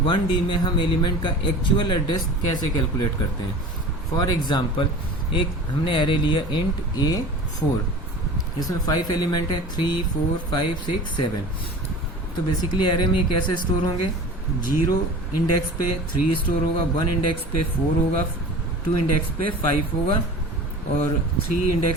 1D में हम एलिमेंट का एक्चुअल एड्रेस कैसे कैलकुलेट करते हैं। फॉर एग्जाम्पल, एक हमने एरे लिया इंट A4, इसमें 5 एलिमेंट है 3, 4, 5, 6, 7। तो बेसिकली एरे में कैसे स्टोर होंगे, 0 इंडेक्स पे 3 स्टोर होगा, 1 इंडेक्स पे 4 होगा, 2 इंडेक्स पे 5 होगा और 3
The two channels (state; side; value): normal; both; correlation 0.38